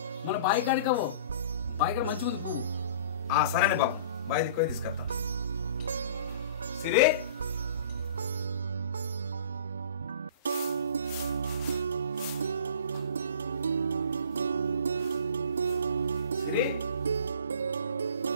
మన బాయి కాడికవో బాయి కాడ మంచిగా ఉంది పువ్వు సరేనే బాబు బాయ్ దిక్కుపోయి తీసుకొస్తా సిరి సిరి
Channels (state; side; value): inverted; both; correlation -0.45